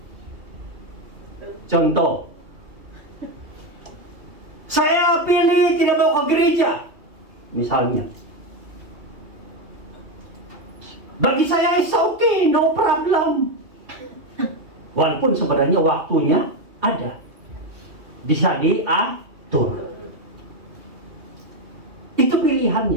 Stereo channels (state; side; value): late; left; 2.8 ms